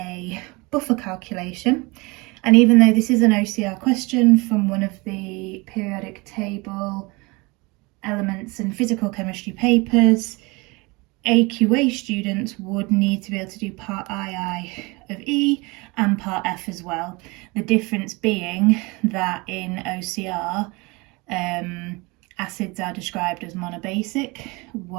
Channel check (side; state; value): left; quieter; 25.9 dB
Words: buffer calculation. And even though this is an OCR question from one of the periodic table elements and physical chemistry papers, AQA students would need to be able to do part II of E and part F as well. The difference being that in OCR, acids are described as monobasic,